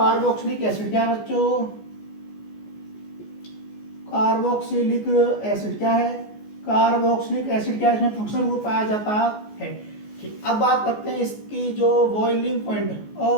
एसिड। क्या है बच्चों, कार्बोक्सिलिक एसिड। क्या है, कार्बोक्सिलिक एसिड। क्या है, इसमें फंक्शनल ग्रुप पाया जाता है। ठीक, अब बात करते हैं इसकी जो बॉइलिंग पॉइंट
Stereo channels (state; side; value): late; right; 14 ms